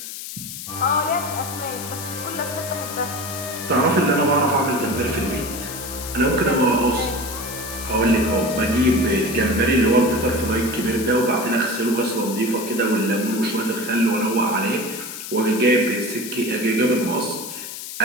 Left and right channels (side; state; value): left; noise; hiss, 9 dB below the sound